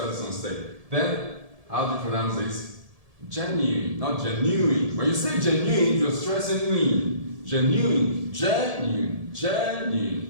is on state. Then, how do you pronounce this? Genuine, not genuine. When you say genuine, you're stressing in. Genuine,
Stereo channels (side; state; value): left; late; 1.7 ms